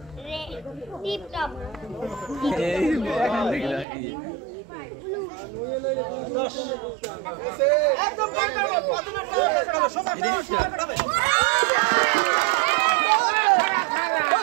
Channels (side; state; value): left; drops out; at 3.9 s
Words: রে টিপটপ এই এখন দেখলা একদম